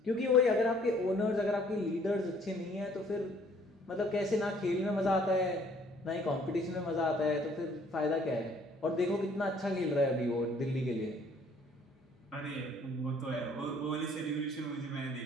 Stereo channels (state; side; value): normal; both; correlation 0.59